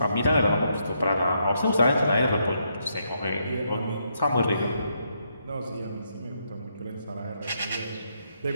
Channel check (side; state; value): both; inverted; correlation -0.78